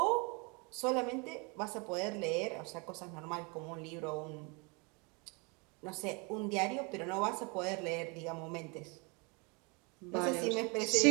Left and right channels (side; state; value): left; quieter; 30.9 dB